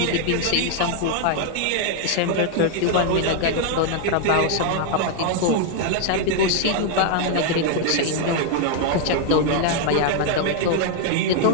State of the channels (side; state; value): both; different; correlation 0.00